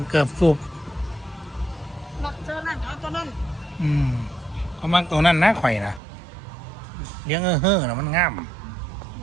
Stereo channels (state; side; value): drops out; left; at 6.0 s